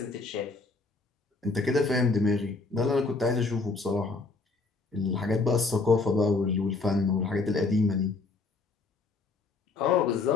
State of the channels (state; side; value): quieter; right; 3.8 dB